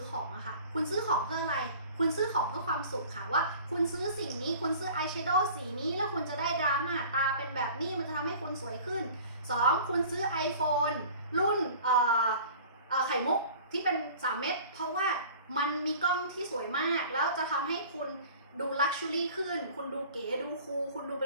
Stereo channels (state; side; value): inverted; both; correlation -0.45